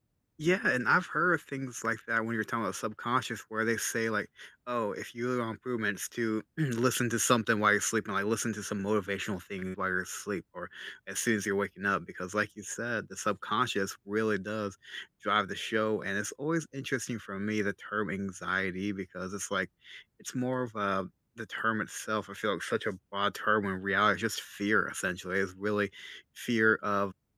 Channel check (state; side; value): identical; both; correlation 1.00